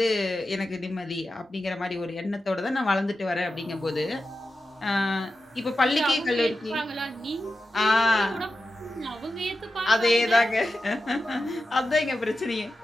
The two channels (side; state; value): both; normal; correlation 0.91